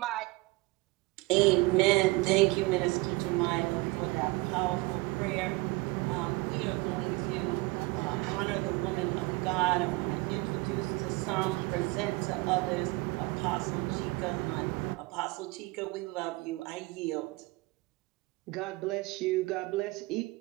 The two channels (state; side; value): quieter; left; 23.3 dB